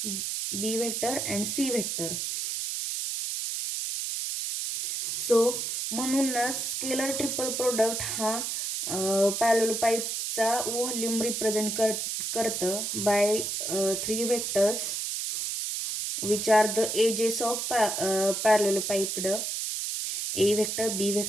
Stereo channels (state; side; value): noise; right; hiss, 2 dB below the sound